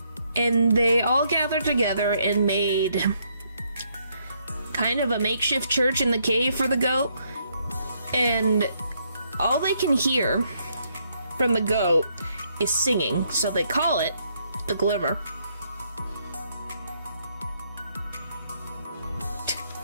And they all gathered together and made kind of a makeshift church in the cave for the goat. And all they can hear from the goat is singing, so they call it the Glimmer.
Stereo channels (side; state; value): both; inverted; correlation -0.73